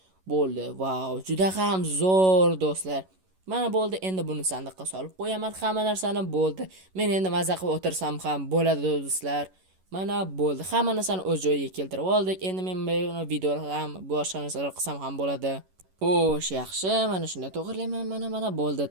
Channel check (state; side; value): late; left; 11 ms